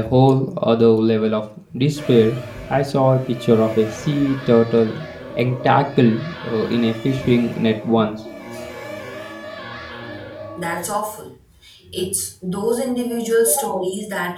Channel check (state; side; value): identical; both; correlation 1.00